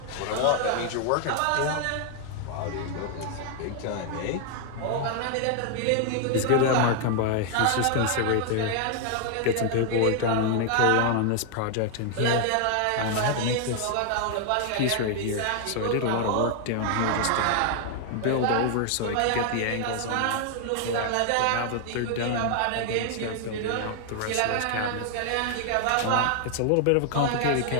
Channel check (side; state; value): both; different; correlation 0.00